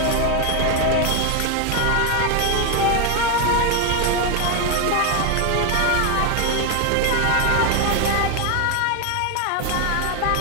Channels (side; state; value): both; different; correlation 0.01